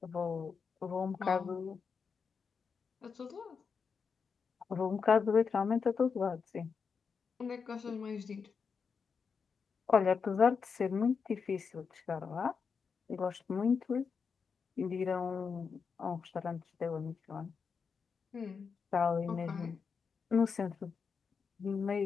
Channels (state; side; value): quieter; right; 5.7 dB